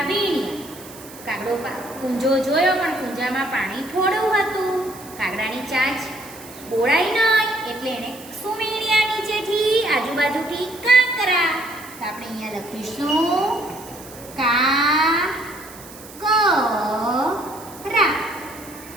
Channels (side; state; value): right; noise; hiss, 18 dB below the sound